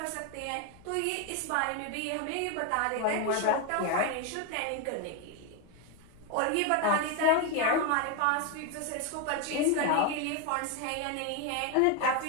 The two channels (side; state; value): both; different; correlation 0.02